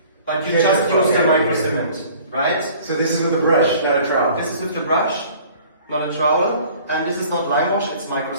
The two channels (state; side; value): inverted; both; correlation -0.50